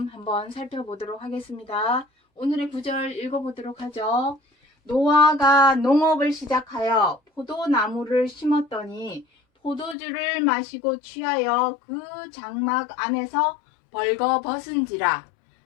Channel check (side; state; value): right; drops out; at 10.0 s